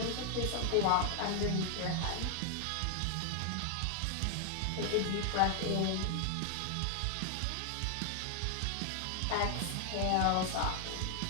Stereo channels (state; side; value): different; both; correlation 0.00